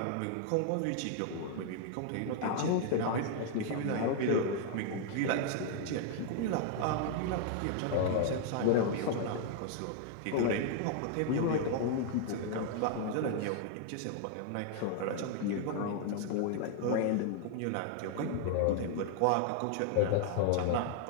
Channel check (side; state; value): both; different; correlation 0.00